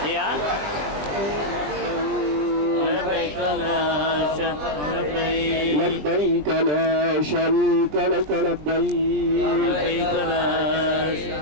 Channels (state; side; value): late; left; 20 ms